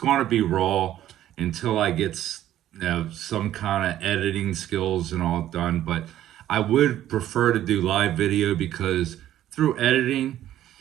be raw until I get some kind of editing skills and all done. But I would prefer to do live video because through editing,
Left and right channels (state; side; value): quieter; left; 12.5 dB